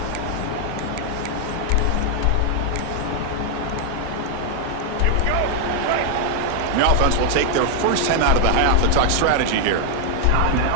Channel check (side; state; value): both; different; correlation 0.00